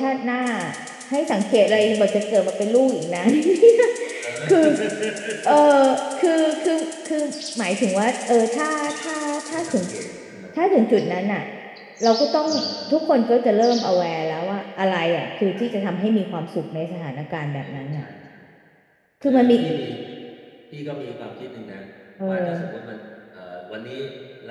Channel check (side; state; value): both; identical; correlation 1.00